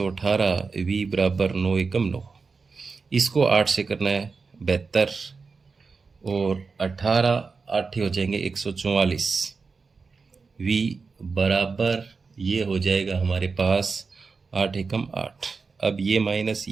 v बराबर 9 एकम 9। इसको 8 से करना है 72 और 18 8 हो जाएंगे 144, v बराबर ये हो जाएगा हमारे पास 8 एकम 8। अब ये माइनस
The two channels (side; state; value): left; quieter; 4.7 dB